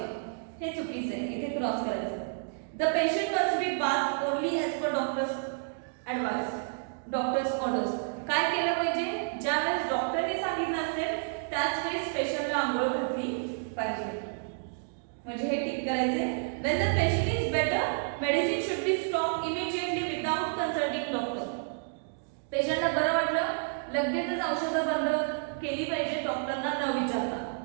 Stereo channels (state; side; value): silent; left; digital silence